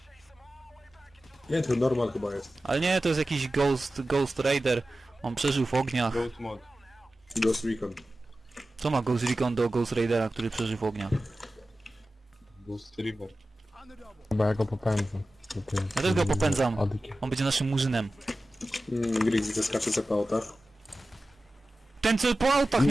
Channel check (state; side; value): normal; both; correlation 0.95